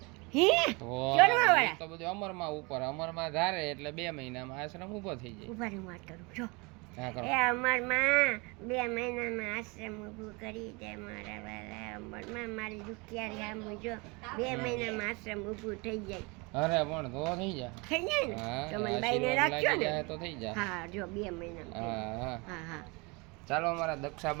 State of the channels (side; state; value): left; quieter; 28.0 dB